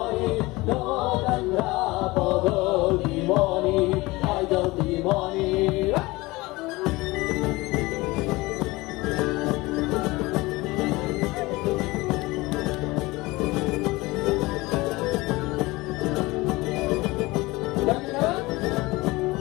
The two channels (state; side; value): quieter; right; 21.5 dB